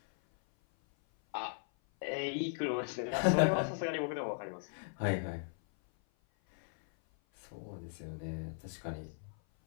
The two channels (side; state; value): right; silent; 53 dB below the other